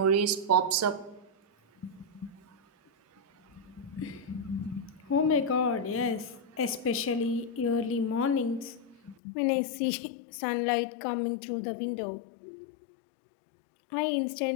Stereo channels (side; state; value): right; drops out; at 9.2 s